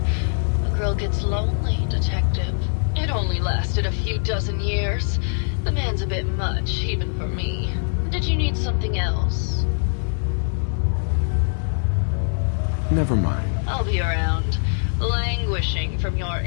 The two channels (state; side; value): silent; right; digital silence